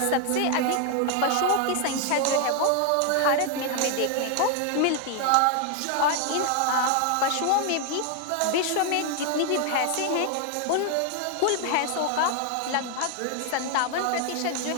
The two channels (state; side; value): different; both; correlation 0.00